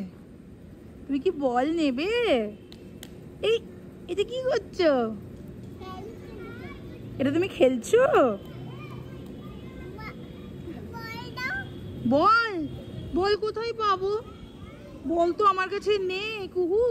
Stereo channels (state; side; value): identical; both; correlation 1.00